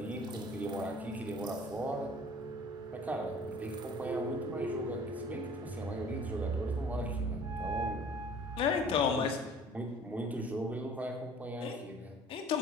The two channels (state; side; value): normal; both; correlation 0.49